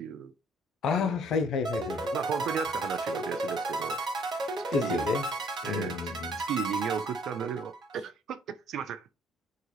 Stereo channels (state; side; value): normal; both; correlation 0.61